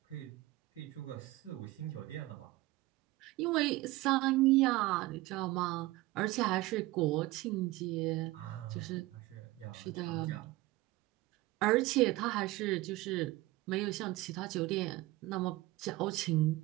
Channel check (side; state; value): left; quieter; 19.1 dB